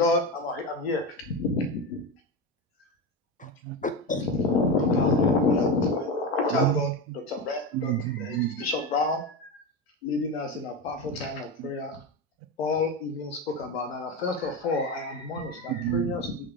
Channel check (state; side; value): normal; both; correlation 0.19